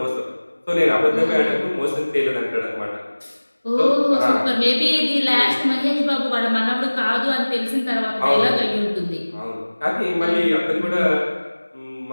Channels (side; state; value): both; inverted; correlation -1.00